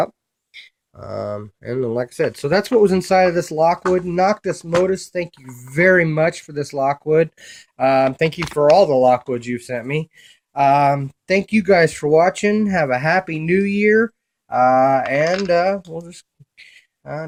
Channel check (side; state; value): both; identical; correlation 1.00